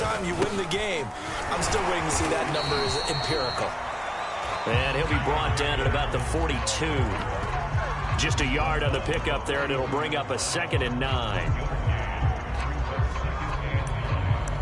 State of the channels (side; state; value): both; identical; correlation 1.00